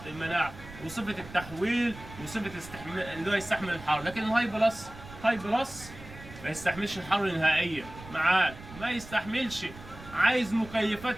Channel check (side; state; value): right; noise; rumble, 16 dB below the sound